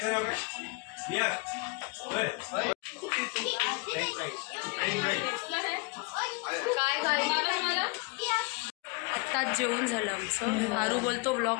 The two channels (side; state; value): right; quieter; 28.8 dB